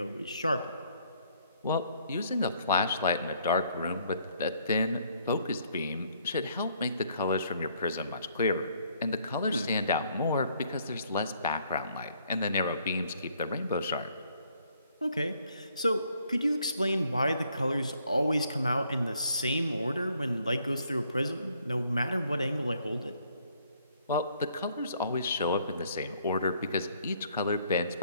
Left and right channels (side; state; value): both; inverted; correlation -0.66